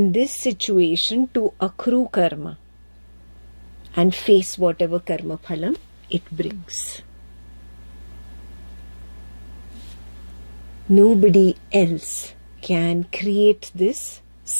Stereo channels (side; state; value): both; inverted; correlation -1.00